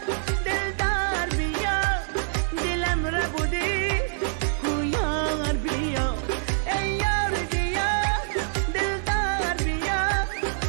دلدار بیا دلم را بودی یار بیا ای یار بیا دلدار بیا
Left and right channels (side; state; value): left; silent; digital silence